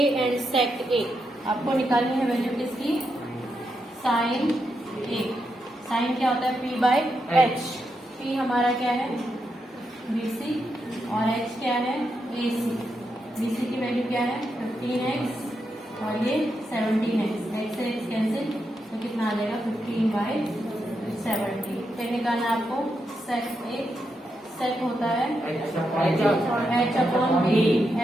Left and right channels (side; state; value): both; normal; correlation 0.84